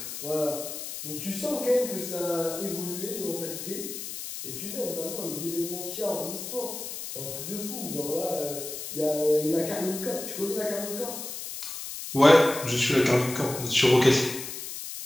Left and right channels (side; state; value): left; noise; hiss, 8 dB below the sound